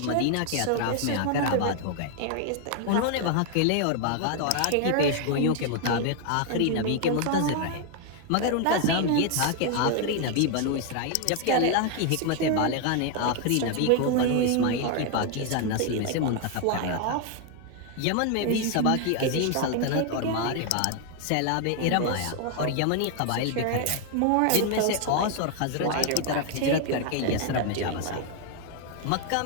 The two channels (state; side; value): different; both; correlation 0.00